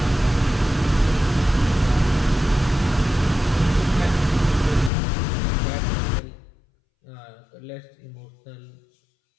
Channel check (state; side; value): drops out; right; at 4.9 s